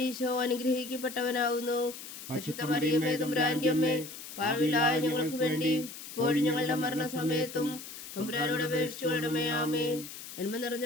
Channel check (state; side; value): noise; left; hiss, 12 dB below the sound